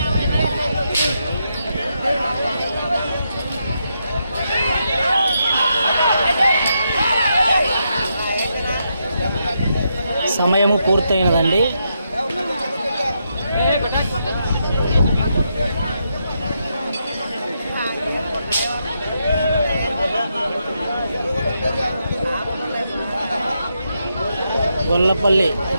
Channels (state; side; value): inverted; both; correlation -0.82